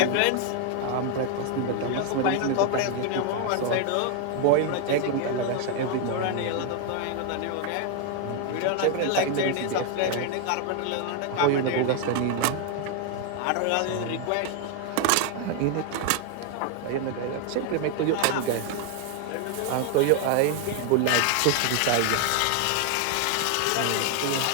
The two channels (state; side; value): different; both; correlation 0.00